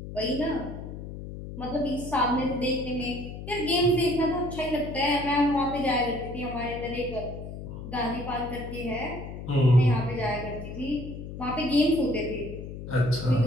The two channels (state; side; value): noise; left; hum, 9 dB below the sound